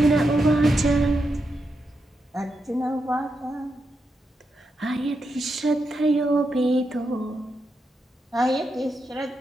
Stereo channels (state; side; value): normal; both; correlation 0.85